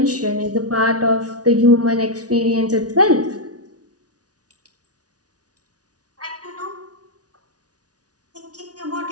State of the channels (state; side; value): late; left; 0.68 ms